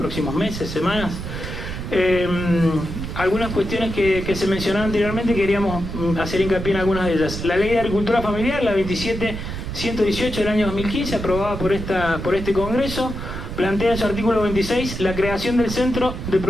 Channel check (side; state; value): right; noise; rumble, 7 dB below the sound